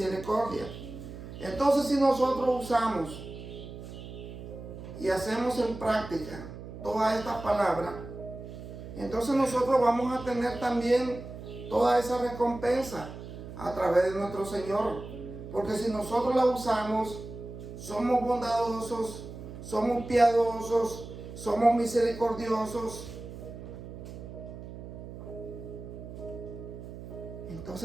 Entonces, si nosotros usamos y hacemos en práctica todas estas palabras, entonces nosotros vamos a tener también toda esa recompensa a través de nuestro Señor. Porque si nosotros la usamos, somos bondadosos, somos piadosos, somos misericordiosos,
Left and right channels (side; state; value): right; noise; hum, 12 dB below the sound